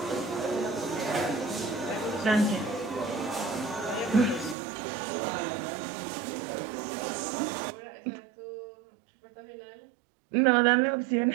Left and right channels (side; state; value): left; drops out; at 4.5 s